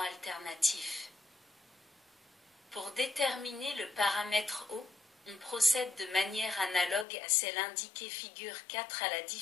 alternatif. Pour déterminer le paramètre O, On procède de manière analogue à celle indiquée figure 4 à la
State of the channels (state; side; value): drops out; right; at 7.1 s